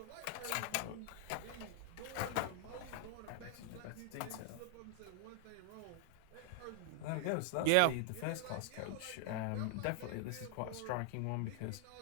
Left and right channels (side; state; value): both; different; correlation 0.00